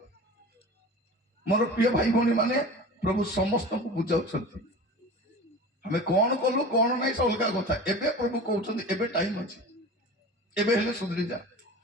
ମୋର ପ୍ରିୟ ଭାଇ ଭଉଣୀ ମାନେ, ପ୍ରଭୁ ସମସ୍ତଙ୍କୁ ବୁଝାଉଛନ୍ତି। ଆମେ କଣ କଲୁ କଣ ନାହିଁ ସେ ଅଲଗା କଥା। ଏବେ ପ୍ରଭୁ କହୁଛନ୍ତି ଏବେ ଟାଇମ ଅଛି, ଏବେ ହେଲେ ସୁଧୁରି ଯା,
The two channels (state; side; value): normal; both; correlation 0.35